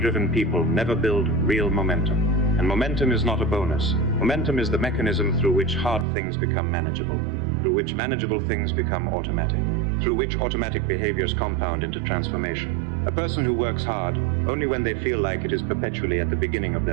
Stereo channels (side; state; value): left; drops out; at 6.1 s